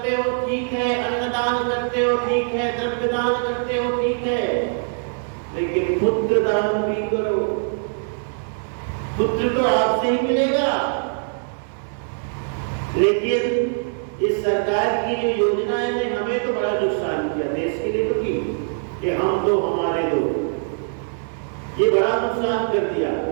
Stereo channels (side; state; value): left; silent; 60 dB below the other